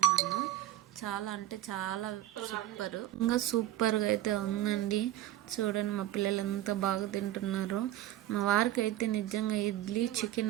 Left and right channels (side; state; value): left; quieter; 13.5 dB